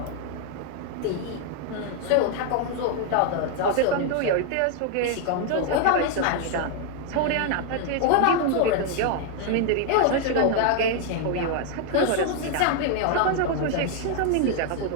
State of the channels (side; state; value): both; different; correlation 0.00